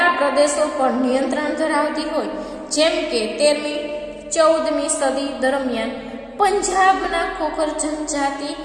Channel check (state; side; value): identical; both; correlation 1.00